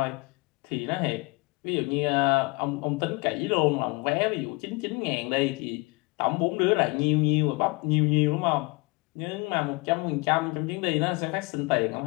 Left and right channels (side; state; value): right; quieter; 27.0 dB